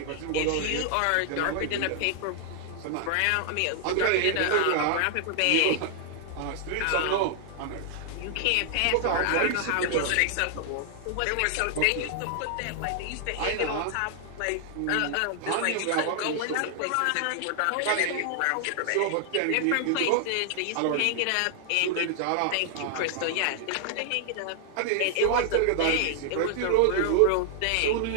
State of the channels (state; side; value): different; both; correlation 0.00